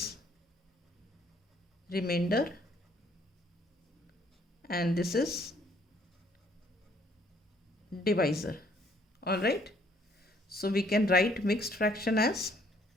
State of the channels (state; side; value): normal; both; correlation 0.64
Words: remainder. And this is divisor. All right. So we can write mixed fraction as